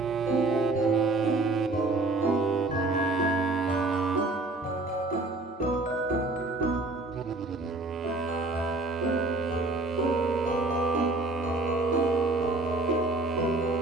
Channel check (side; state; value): left; quieter; 3.1 dB